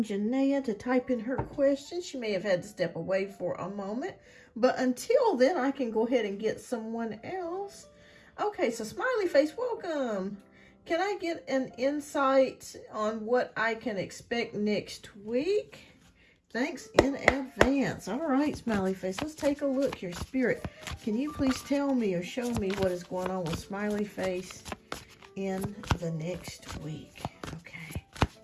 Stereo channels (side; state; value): both; identical; correlation 1.00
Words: Janaea to type in her question. She may have had to step away for a moment, but until then, I can go ahead and get someone else. Okay, so Smiley Face, welcome. Can I get an insight on what I can expect next week? Thanks in advance. All right, Smiley Face, let's take a look here. Spirit, can you please tell me or show me what is going on with Smiley Face in the next week? Okay.